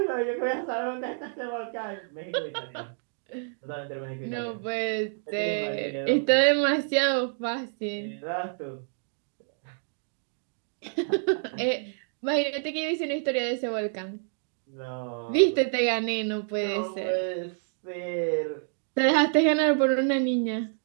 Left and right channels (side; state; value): left; silent; digital silence